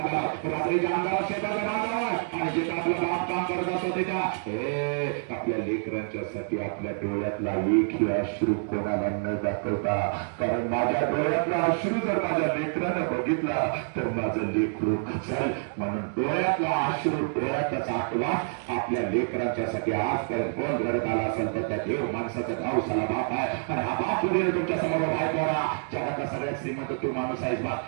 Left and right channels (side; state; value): left; silent; 60 dB below the other